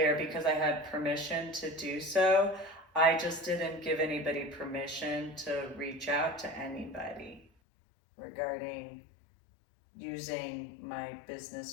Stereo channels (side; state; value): right; drops out; at 7.5 s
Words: because I had permission to do so. I just didn't give anybody permission to reach out to anybody regarding using my